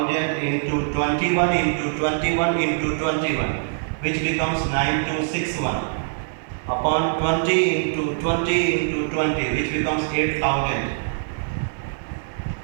into 21 into 21 into 21, which becomes 9261, upon 20 into 20 into 20, which becomes 8000.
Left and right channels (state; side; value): silent; left; digital silence